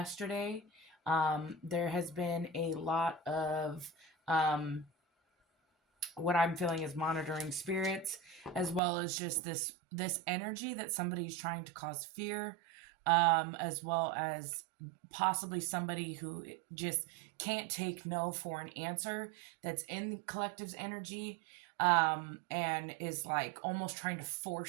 There has been a lot of what I'm feeling is monitoring spirits, as well as just this energy that somebody's trying to cause fear, as well as possibly somebody who just can't take no for an answer that's in collective's energy, and is like almost trying to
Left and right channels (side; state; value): left; drops out; at 8.8 s